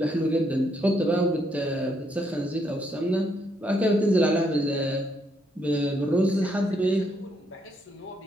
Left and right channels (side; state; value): both; normal; correlation 0.75